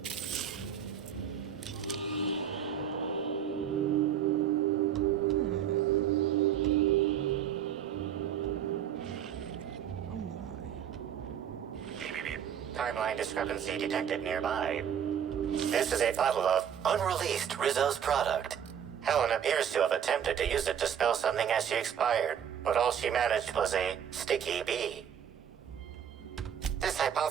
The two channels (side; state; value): left; quieter; 8.7 dB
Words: Timeline discrepancy detected nearby. This is a bottle of unreleased Rizzo's product. Helen appears to have attempted to use it to spell something as she expired, but all she managed was a sticky bee. This